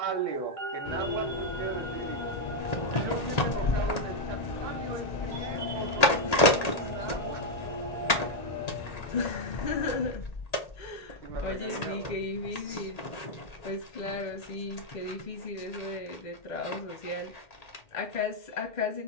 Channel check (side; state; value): right; late; 1.8 ms